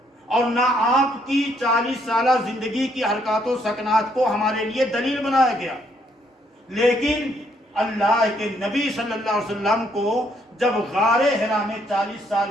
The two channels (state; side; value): normal; both; correlation 0.70